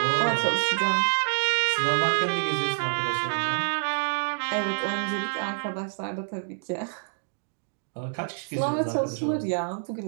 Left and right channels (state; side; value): silent; left; digital silence